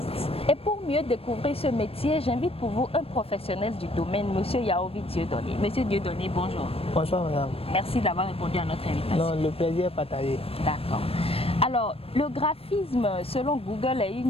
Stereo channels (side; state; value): right; late; 0.28 ms